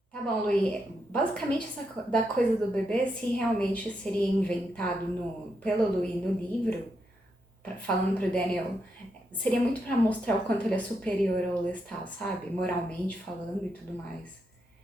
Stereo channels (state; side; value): normal; both; correlation 0.82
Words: Tá bom, Luí. Basicamente, da coisa do bebê, se realmente seria inventado pelo Luí no livro, falando pro Daniel, seria muito pra mostrar o quanto ele é superior ao Lestat, sabe? Moralmente falando e tudo mais.